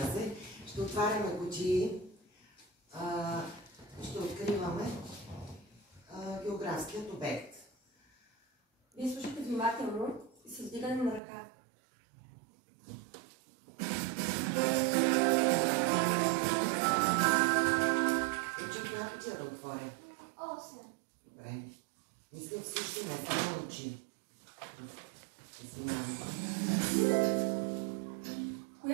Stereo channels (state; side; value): drops out; left; at 11.2 s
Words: се. Ще отваряме кутии, ще откриваме географският обект. Вие слушате внимателно и с вдигане на ръка. Учи коя кутия да отворя? 8. Добре. Мисля всички, не само учи.